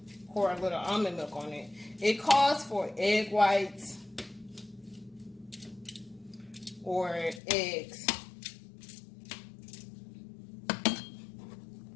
pour a little almond milk on it. It calls for egg whites or eggs.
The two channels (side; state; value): right; drops out; at 7.4 s